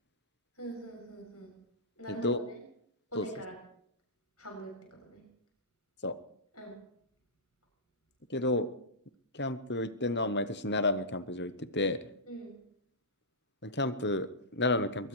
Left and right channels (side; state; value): both; normal; correlation -0.17